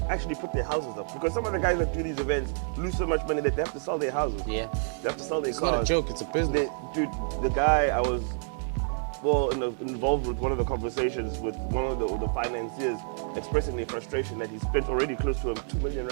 houses up, because some of the guys that do these events lose so much money that they have to sell their houses. Yeah. They have to sell their It's cars. not a joke, it's a business. Dude, the guy I was involved with one of the conversations with one of the financiers, expressing their frustration that he spent already close to 2 million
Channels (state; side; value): silent; left; 59 dB below the other